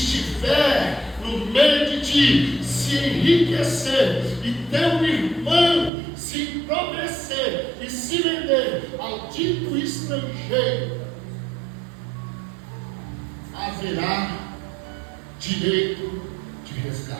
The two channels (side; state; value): left; drops out; at 5.9 s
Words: no meio de ti se enriquecer e teu irmão se empobrecer e se vender ao dito estrangeiro, haverá direito de